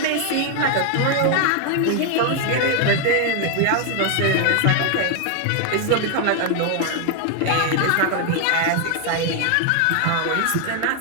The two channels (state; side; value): different; both; correlation 0.00